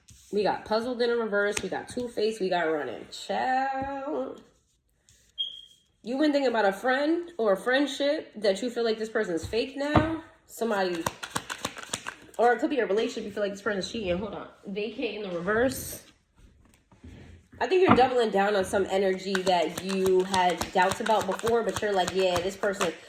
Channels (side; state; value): both; identical; correlation 1.00